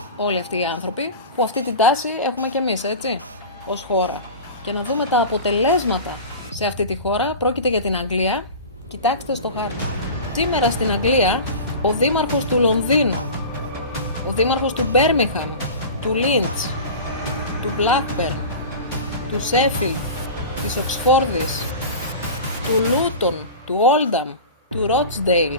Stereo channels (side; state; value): both; inverted; correlation -0.33